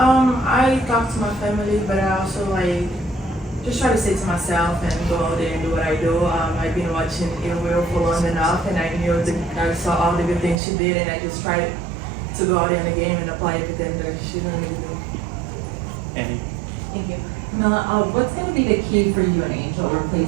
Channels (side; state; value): left; drops out; at 10.6 s